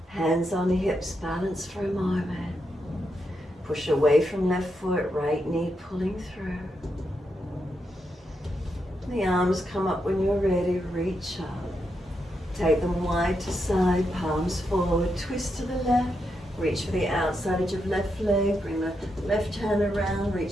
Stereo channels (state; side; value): normal; both; correlation 0.83